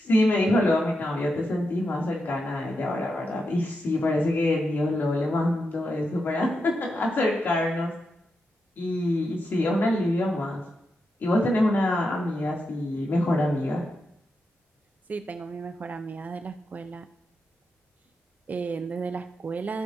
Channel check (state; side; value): normal; both; correlation 0.86